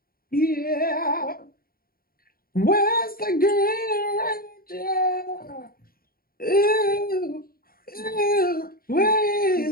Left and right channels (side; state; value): right; late; 0.43 ms